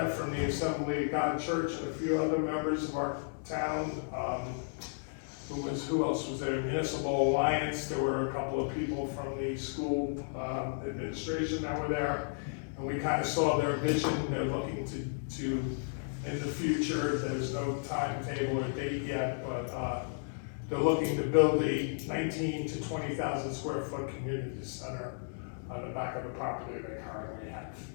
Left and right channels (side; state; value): right; silent; digital silence